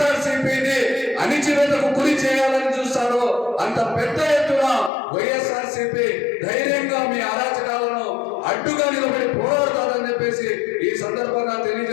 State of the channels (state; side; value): drops out; right; at 4.9 s